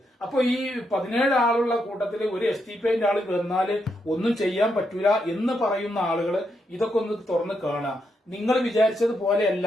അപ്പൊ ഈ 17 ആളുള്ള കൂട്ടത്തിൽ ഒരു STPIന്റെ ആള് വന്നാല് ഒന്നും ചെയ്യാൻ പറ്റൂല എന്ന് പറയുന്ന ആളുകൾ ഇതൊക്കെ ഒന്ന് തുറന്ന് കാണുക. നിങ്ങൾ വിചാരിച്ചത് പോലെയല്ല.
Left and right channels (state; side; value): normal; both; correlation 0.81